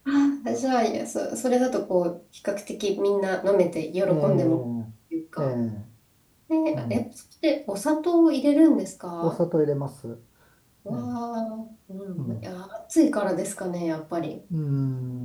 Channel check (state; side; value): identical; both; correlation 1.00